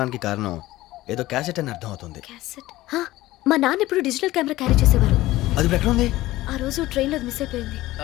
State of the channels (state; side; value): quieter; right; 17.0 dB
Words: కారణం ఏదో క్యాసెట్ అని అర్థం అవుతుంది. క్యాసెట్? మా నాన్న ఎప్పుడు డిజిటల్ కెమెరా క్యారీ చేసేవారు. అది ఇప్పుడు ఎక్కడ ఉంది? ఆ రోజు ట్రైన్లో మిస్ అయిపోయింది.